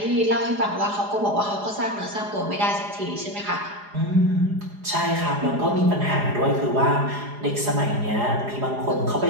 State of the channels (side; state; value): left; late; 4.9 ms